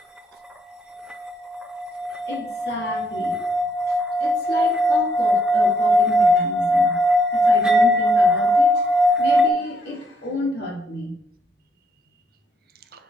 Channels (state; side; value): normal; both; correlation 0.73